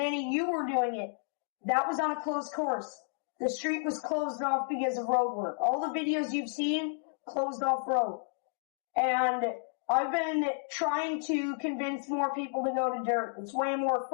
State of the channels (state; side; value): silent; right; digital silence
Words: you were doing it. That was on a closed course. The street was closed off because of road work. All the videos you've seen, closed off road. And I've been trying to convince more people to go to dirt. It's way more